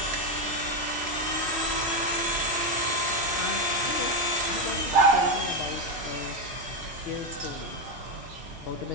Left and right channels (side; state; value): left; late; 3.0 ms